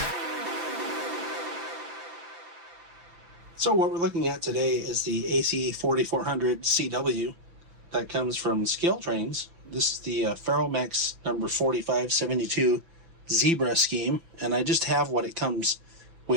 So what we're looking at today is the AC4400CW that comes from Scaletrains. This is the Ferromex number 4572 Zebra scheme, and I just have what it comes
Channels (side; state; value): left; late; 5.9 ms